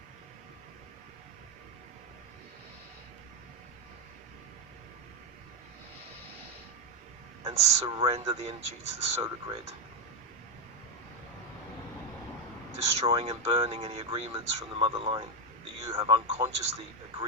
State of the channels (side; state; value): both; normal; correlation 0.07